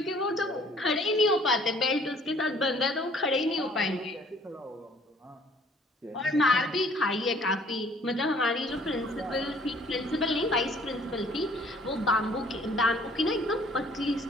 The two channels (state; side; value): normal; both; correlation 0.57